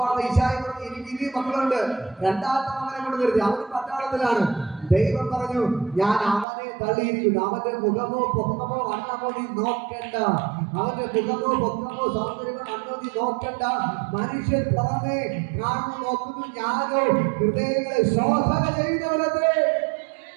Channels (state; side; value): drops out; left; at 6.5 s